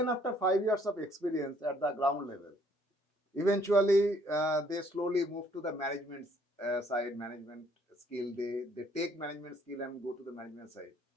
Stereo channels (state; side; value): normal; both; correlation 0.64